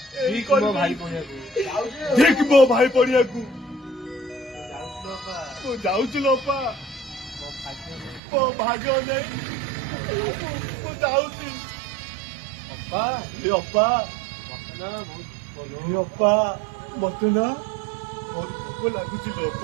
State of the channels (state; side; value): drops out; left; at 8.2 s